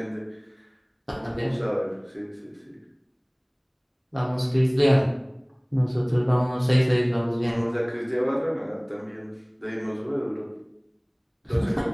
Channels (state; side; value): identical; both; correlation 1.00